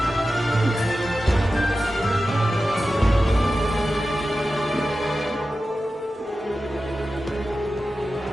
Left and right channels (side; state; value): both; normal; correlation 0.93